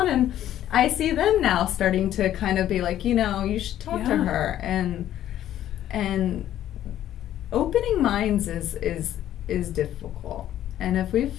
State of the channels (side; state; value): right; quieter; 12.0 dB